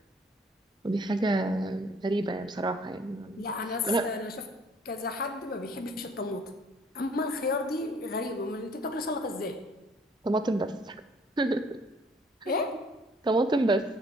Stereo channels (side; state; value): both; normal; correlation 0.58